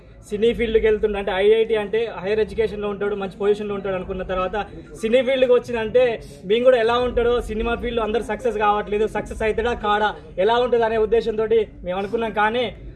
సినీ ఫీల్డ్కి వెళ్తుండే, అంటే ఐఐటి అంటే హైయర్ ఎడ్యుకేషన్లో ఉంటాడు, మంచి పొజిషన్లో ఉంటాడు అనుకున్న తర్వాత సినీ ఫీల్డ్కి వచ్చిందంటే మేము కూడా ఎలా ఉంటాడో, సినిమా ఫీల్డ్లో అందరూ సక్సెస్ కావట్లేదు, సక్సెస్ అవుతాడా కాడా ఎలా ఉంటుంది అనే ఉద్దేశంతో మేము అనుకున్నాం. కానీ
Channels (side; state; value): both; identical; correlation 1.00